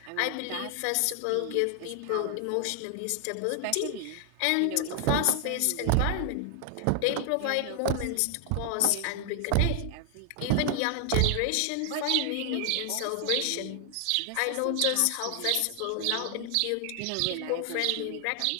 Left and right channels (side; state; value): both; different; correlation 0.00